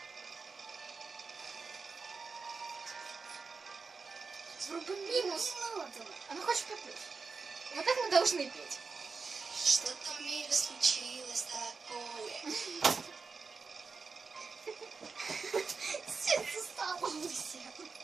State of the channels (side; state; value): left; quieter; 4.7 dB